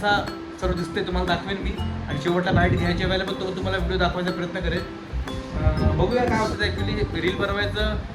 सर्व दिसते तुम्हाला दाखवेन मी. आणि शेवटला बाईट घ्यायच्या वेळेला पण तो तुम्हाला व्हिडिओ दाखवायचा प्रयत्न करेल. बघूया काय होतं. ॲक्च्युली रील बनवायचं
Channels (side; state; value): both; identical; correlation 1.00